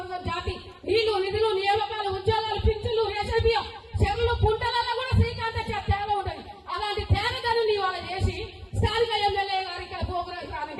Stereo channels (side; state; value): both; identical; correlation 1.00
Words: జాతి నీళ్లు, నిధులు, నియామకాలు, ఉద్యోగాలు, పింఛన్లు, రేషన్ బియ్యం, చెరువులు, కుంటలలో కూడా శ్రీకాంతచారి తేగ ఉంటుంది. అలాంటి తేగను నీ వాళ్ళ చేసి స్థానిక ఎమ్మెల్యే గారి ఇక్కడ ప్రోగ్రాం